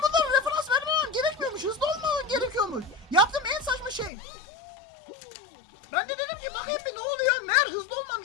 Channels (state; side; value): drops out; right; at 4.1 s